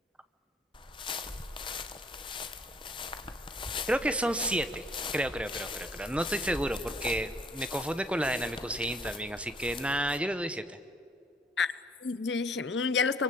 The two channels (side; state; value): both; normal; correlation 0.61